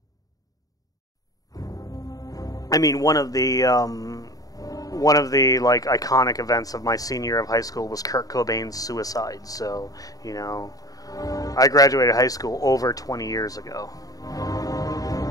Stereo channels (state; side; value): late; right; 0.18 ms